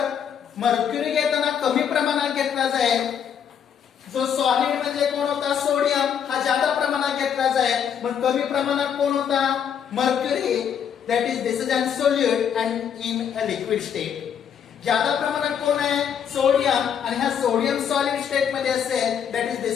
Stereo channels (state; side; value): quieter; right; 8.2 dB